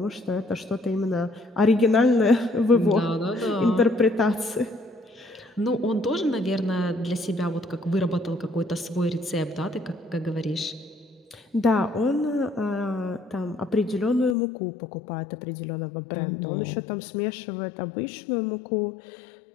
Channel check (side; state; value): right; drops out; at 14.4 s